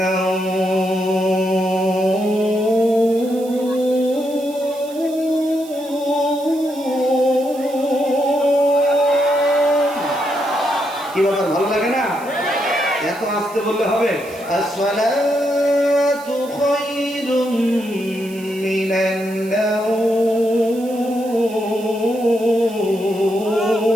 নাওম, কি ব্যাপার, ভালো লাগে না? এত আস্তে বললে হবে? আসসালাতু খায়রুম মিনান নাওম,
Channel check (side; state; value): right; noise; hiss, 20 dB below the sound